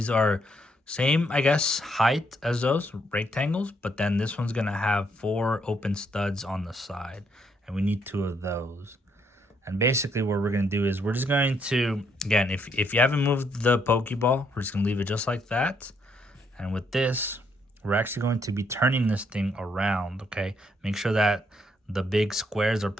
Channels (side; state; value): both; normal; correlation 0.73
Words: are same, I guess, height as those rectangles, but then this one's going to have 4 open studs on the side. And we need 2 of those. And basically what we're going to do is we're just going to, again, if you haven't moved the Pokeball, we're just going to leave it just like that. And with this, we're actually going to be turning this thing around, okay? Make sure that the big squares are